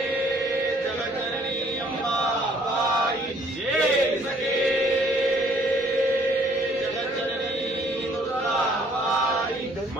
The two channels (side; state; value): both; normal; correlation 0.61